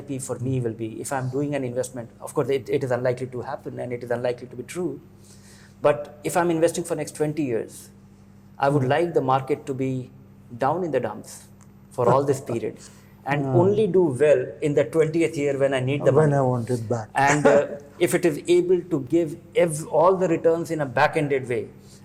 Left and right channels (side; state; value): both; identical; correlation 1.00